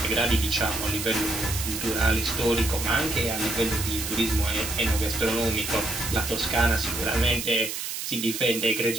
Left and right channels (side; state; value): right; noise; hiss, 5 dB below the sound